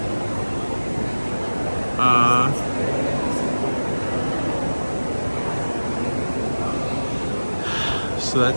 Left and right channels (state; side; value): inverted; both; correlation -1.00